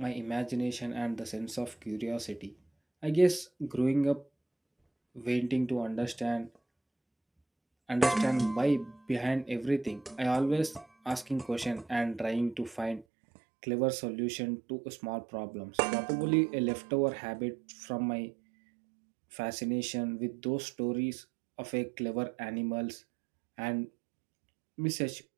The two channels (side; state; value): left; drops out; at 13.1 s